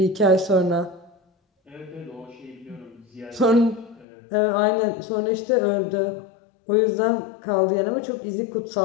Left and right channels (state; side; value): drops out; right; at 4.0 s